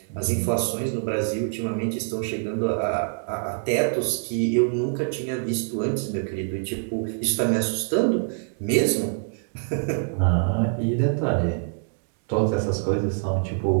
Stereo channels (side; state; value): left; silent; digital silence